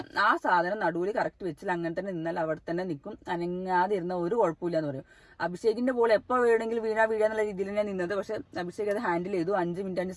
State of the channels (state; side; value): identical; both; correlation 1.00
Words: ആ സാധനം നടുവിൽ കറക്റ്റ് വെച്ചില്ല, അങ്ങനെ തന്നെ നിന്നാൽ അവിടെ തന്നെ നിൽക്കും, അനങ്ങാതെ ഇരുന്ന ഒരു കുഴപ്പമില്ല എന്ന് പറയും. അഭിഷേകിന്റെ ബോൾ എപ്പോൾ വേണമെങ്കിലും വീഴാന്നുള്ള രീതിയിൽ ഞാൻ നിന്നത്. പക്ഷെ അഭിഷേക് അത് ഹാൻഡിൽ ചെയ്തു. 5 മിനിറ്റ് 5